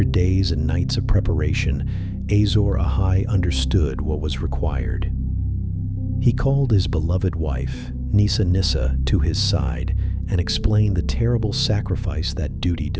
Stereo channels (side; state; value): both; identical; correlation 1.00